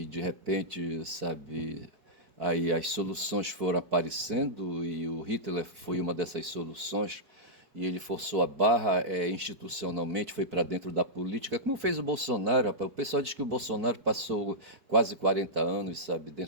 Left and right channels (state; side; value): late; left; 4.5 ms